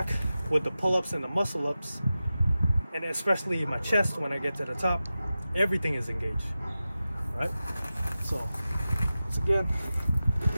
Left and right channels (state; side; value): inverted; both; correlation -0.94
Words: with the pull-ups and the muscle-ups, and especially my chest when I get to the top, everything is engaged, right? So, once again.